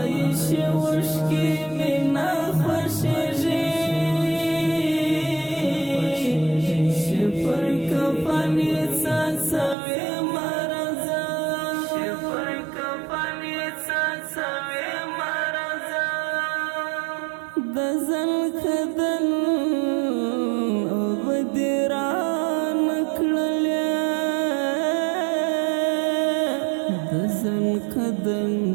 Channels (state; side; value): drops out; left; at 9.8 s